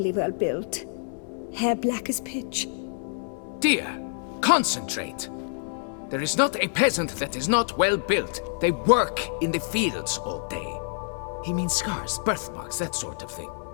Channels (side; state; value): right; silent; 60 dB below the other